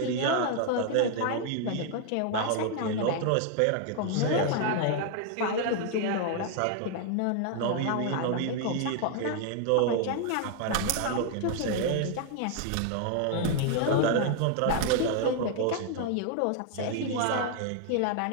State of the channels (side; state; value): both; different; correlation 0.00